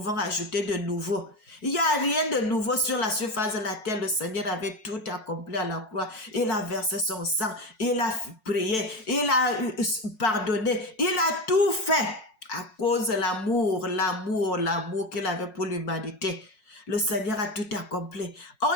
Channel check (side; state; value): right; late; 5.5 ms